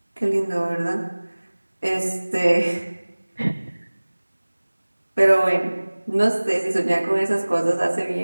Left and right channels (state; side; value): inverted; both; correlation -1.00